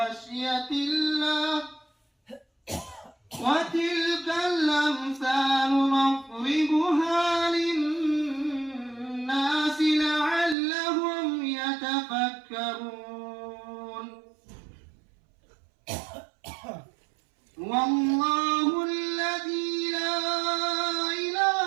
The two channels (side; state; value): left; drops out; at 10.6 s